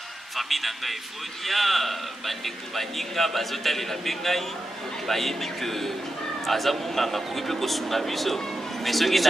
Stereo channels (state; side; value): normal; both; correlation 0.89